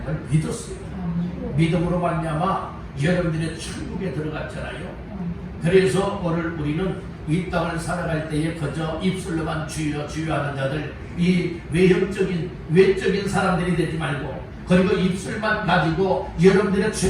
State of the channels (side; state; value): both; identical; correlation 1.00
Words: 믿었어요. 믿음으로 말미암아 여러분들의 천국에 들어갔잖아요. 그래서 오늘 우리는 이 땅을 살아갈 때에 그저 입술로만 주여 주여 하는 자들, 이 외적인 사람들이 되지 말고, 그리고 입술만 가지고 여러분들의